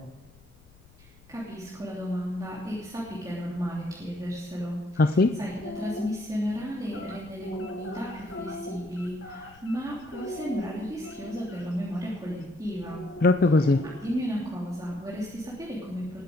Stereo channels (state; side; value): noise; left; rumble, 26 dB below the sound